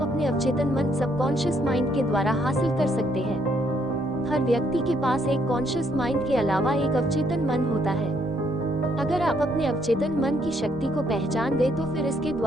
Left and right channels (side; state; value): both; normal; correlation 0.70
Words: अपने अवचेतन मन सबकॉन्शियस माइंड के द्वारा हासिल कर सकते हैं। हर व्यक्ति के पास एक कॉन्शियस माइंड के अलावा एक अवचेतन मन होता है। अगर आप अपने अवचेतन मन की शक्ति को पहचान गए तो फिर इसके